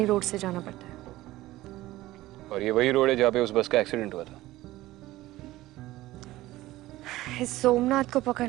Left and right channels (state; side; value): quieter; left; 16.9 dB